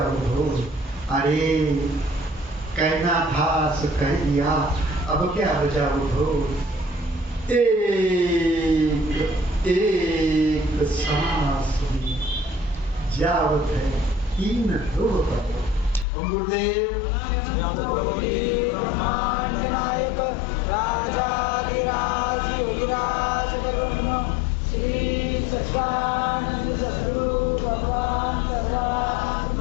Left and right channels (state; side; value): drops out; right; at 16.1 s